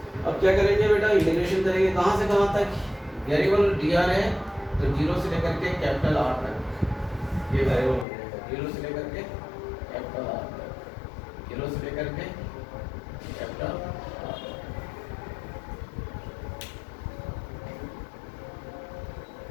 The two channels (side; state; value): right; drops out; at 8.1 s